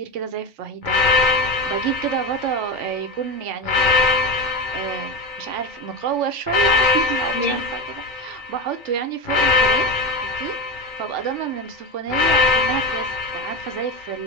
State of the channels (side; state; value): both; normal; correlation 0.18